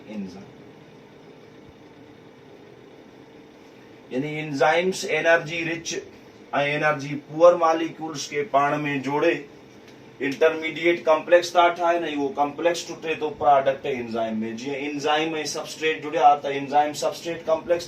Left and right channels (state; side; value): identical; both; correlation 1.00